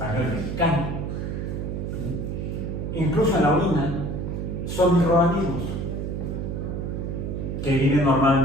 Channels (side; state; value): right; noise; hum, 3 dB below the sound